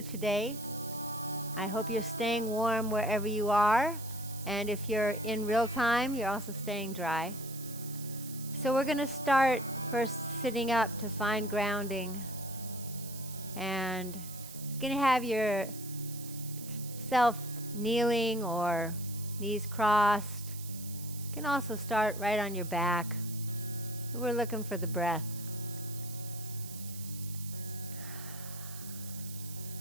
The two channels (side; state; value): right; noise; hiss, 13 dB below the sound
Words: today. I hope you're staying warm wherever you are, and if you're in real time, you're also staying dry. So we're going to start first sitting up to find grounding, and you're going to have yourself kneeling or knees crossed. You can also start right on your back. We're looking for the breath.